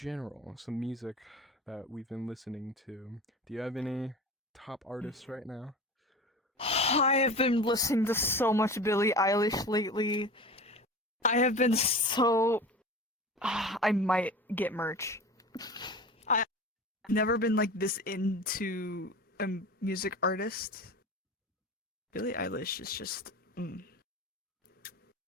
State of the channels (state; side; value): normal; both; correlation 0.34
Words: some music that we've been listening to. Do you have any top artists right now? I have been listening to so much Billie Eilish lately. I have been so. I might get merch. I've never been like this into a music artist. Billie Eilish is just.